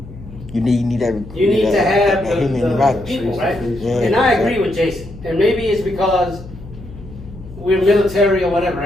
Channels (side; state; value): left; noise; hum, 16 dB below the sound